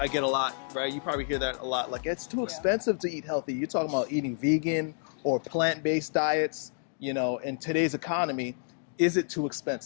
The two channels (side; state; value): right; silent; digital silence